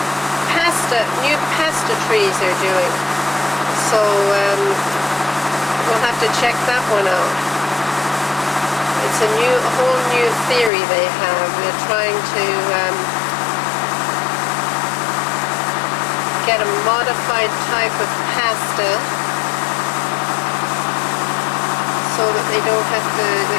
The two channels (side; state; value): right; drops out; at 10.7 s